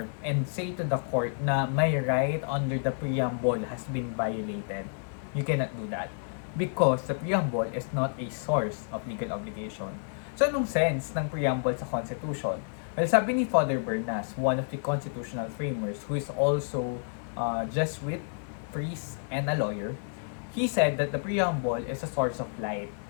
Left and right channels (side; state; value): right; silent; digital silence